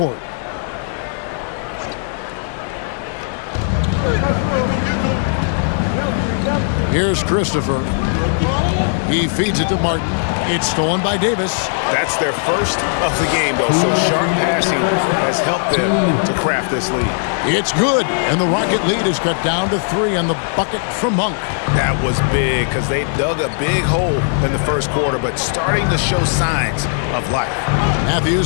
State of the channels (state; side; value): silent; right; digital silence